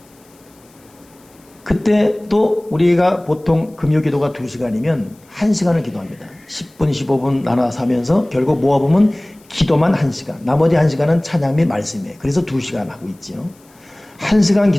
그때 또 우리가 보통 금요 기도가 2시간이면 1시간을 기도합니다. 10분, 15분 나눠서 하면서 결국 모아보면 기도만 1시간, 나머지 1시간은 찬양 및 말씀이에요. 그래서 2시간 하고 있죠. 1시간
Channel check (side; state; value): left; noise; hiss, 30 dB below the sound